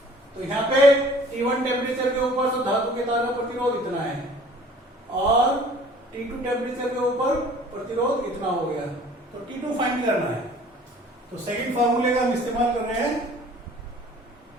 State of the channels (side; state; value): both; normal; correlation 0.51